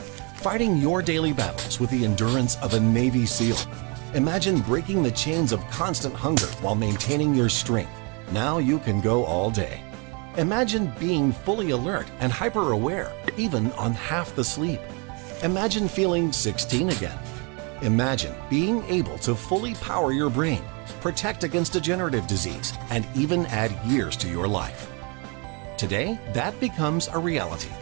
fighting your daily battles with the endurance of a Navy SEAL. Imagine breaking the chains of constant hunger while maintaining your strength. Now you can go all day. Imagine being fully alert and hyper-aware, even on half the sleep. Imagine feeling 16 again. Imagine being able to fully power your brain, protect against degenerative disease, and even add years to your life. Today, that becomes a reality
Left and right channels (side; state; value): left; quieter; 32.9 dB